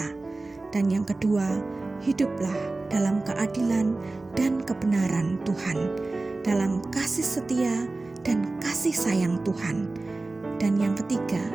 Dan yang kedua, hiduplah dalam keadilan dan kebenaran Tuhan, dalam kasih setia dan kasih sayang Tuhan. Dan yang ketiga,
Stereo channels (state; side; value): quieter; left; 3.2 dB